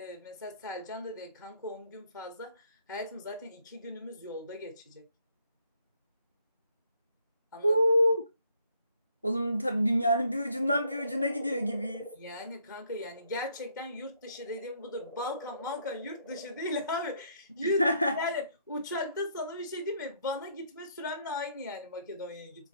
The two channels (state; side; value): inverted; both; correlation -0.70